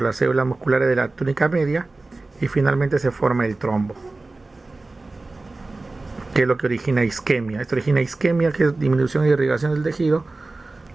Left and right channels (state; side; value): quieter; left; 3.3 dB